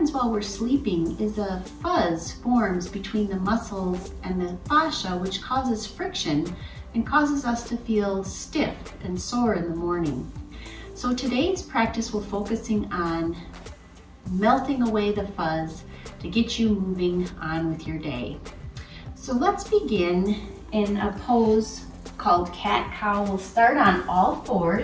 while we're sleeping is a fuzz forms between the muscles and the fascia, which causes friction and causes us to feel stiff and sore in the morning. So today's practice will focusing on melting away the fuzz to get you moving on with your day. So let's begin in a pose called cat-cow. We'll start on all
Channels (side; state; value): both; identical; correlation 1.00